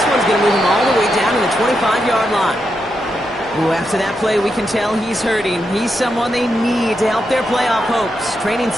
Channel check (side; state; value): both; normal; correlation 0.84